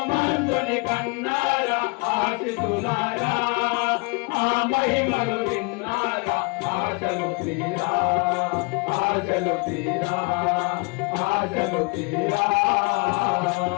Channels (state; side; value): quieter; right; 29.3 dB